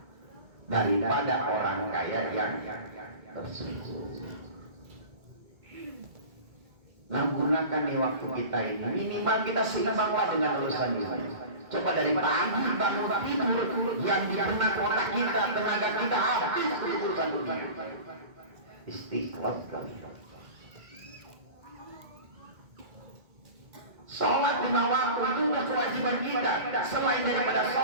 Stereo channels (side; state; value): left; late; 1.9 ms